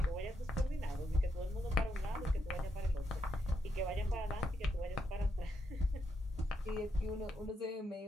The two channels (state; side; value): normal; both; correlation 0.81